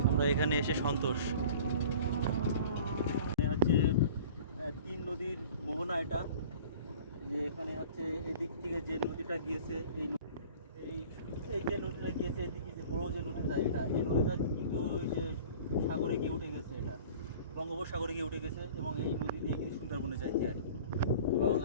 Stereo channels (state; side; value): inverted; both; correlation -0.44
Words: আমরা এখানে এসে সন্তোষ। হচ্ছে তিন নদীর মোহনা এটা, যে এখানে হচ্ছে এদিক থেকে যে নদীটা গিয়েছে, এই এই যে নদীটা গিয়েছে এদিকে যে বড় যে নদীটা, এই নদীটা কিন্তু ওই যে সাগরে গিয়ে উঠে গেছে, এটা বঙ্গোপসাগরে গিয়ে উঠে গেছে এবং এই নদী দিয়ে কিন্তু সুন্দরবনে যাইছে। এবং